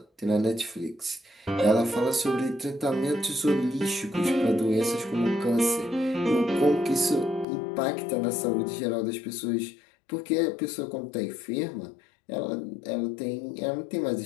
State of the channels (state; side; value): drops out; right; at 7.5 s